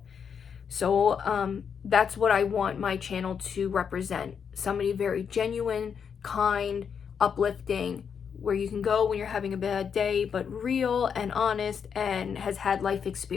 So that's what I want my channel to represent. Somebody very genuine, kind, uplifting, where you can go when you're having a bad day, but real and honest and has had life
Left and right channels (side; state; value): right; quieter; 7.0 dB